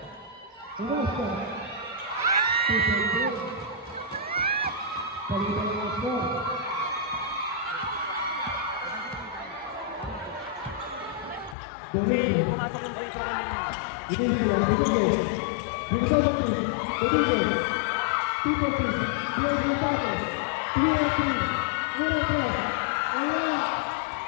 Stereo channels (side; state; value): right; drops out; at 11.6 s